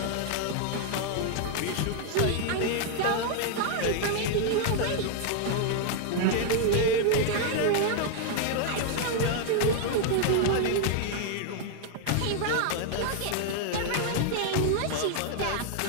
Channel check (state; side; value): different; both; correlation 0.00